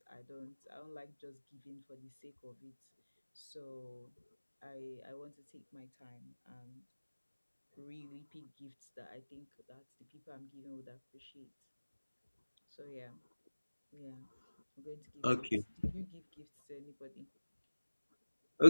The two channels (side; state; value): both; inverted; correlation -1.00